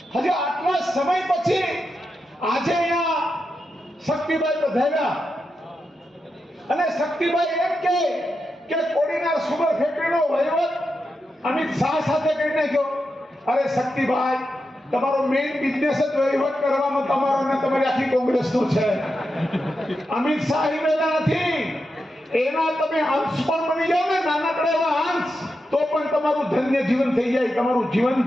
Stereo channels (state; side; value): normal; both; correlation 0.88